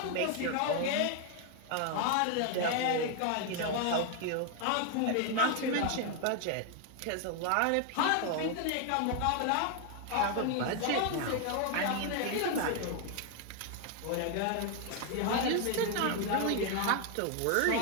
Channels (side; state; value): both; different; correlation 0.00